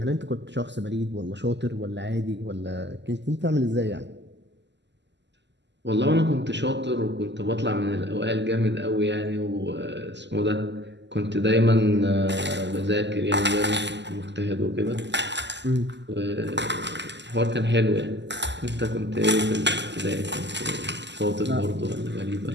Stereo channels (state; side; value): late; left; 0.51 ms